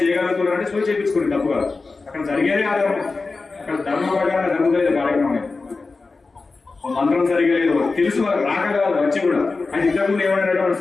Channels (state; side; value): quieter; right; 3.9 dB